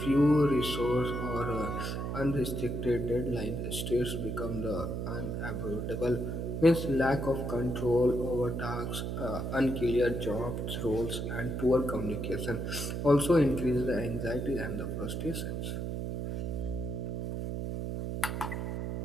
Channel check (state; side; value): noise; right; hum, 3 dB below the sound